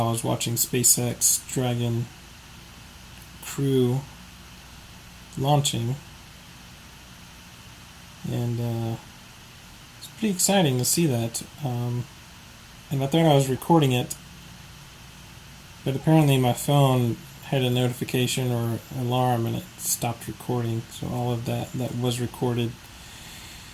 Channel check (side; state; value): both; identical; correlation 1.00